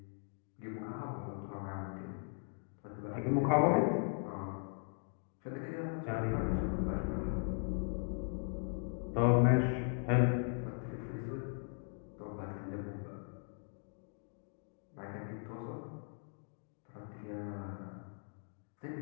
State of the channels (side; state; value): right; silent; 52 dB below the other